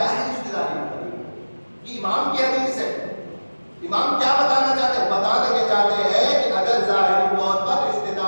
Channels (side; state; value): both; inverted; correlation -1.00